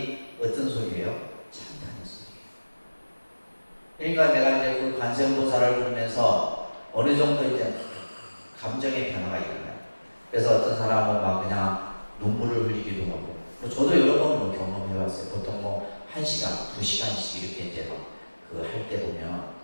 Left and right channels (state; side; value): inverted; both; correlation -1.00